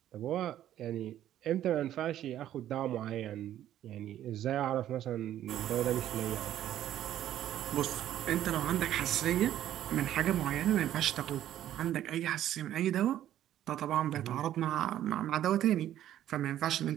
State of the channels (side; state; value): left; quieter; 12.0 dB